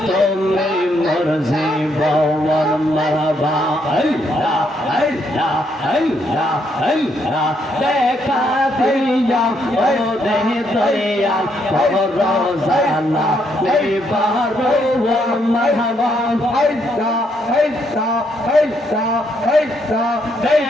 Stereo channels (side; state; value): both; normal; correlation 0.74